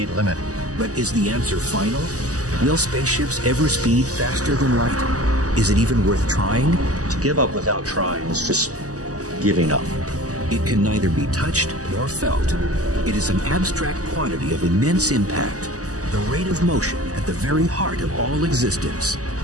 limit. But is the answer final? Will spaceships ever speed faster than light? Is it even worth trying? To give up without trying is just giving up. It can neither be touched nor felt. It is an abstract quantity of immense impact, the rate of motion at the very heart of all existence,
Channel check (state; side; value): late; left; 0.67 ms